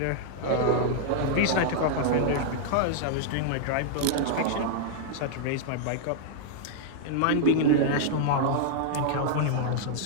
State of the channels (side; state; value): both; different; correlation -0.01